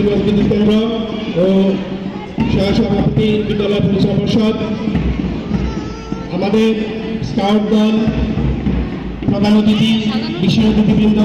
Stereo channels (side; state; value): both; identical; correlation 1.00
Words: বিদ্যুৎ কেন্দ্র ও সহসভাপতি বিদ্যালয় পরিচালনা পরিষদ, আমাদের স্কাউট দল, প্রধান অতিথি, বিশেষ অতিথিবৃন্দ,